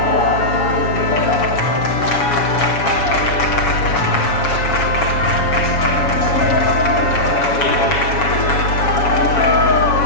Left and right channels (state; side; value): late; right; 7.2 ms